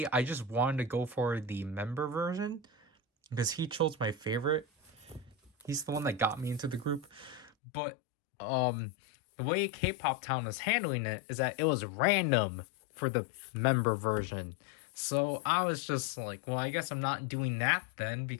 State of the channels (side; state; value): right; drops out; at 7.5 s